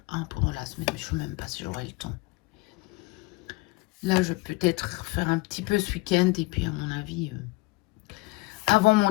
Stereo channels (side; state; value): right; quieter; 23.3 dB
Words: un pendant la semaine, mais je ne sais même pas si j'aurai le temps. Là, je vais peut-être faire un petit peu ce week-end et puis à mon avis, avant mon